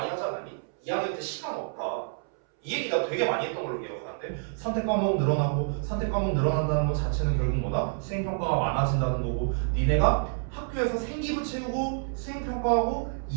하지 않았니? 2학년 때 시간 없다. 이 얘기 나 되게 많이 했던 걸로 기억하는데 선택 과목 늘어나고 선택 과목 늘어난다는 것 자체는 결국 뭐다? 수행평가가 많아진다는 거고 니네가 학교에서 생기부 채우고 수행평가하고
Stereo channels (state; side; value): silent; left; 59 dB below the other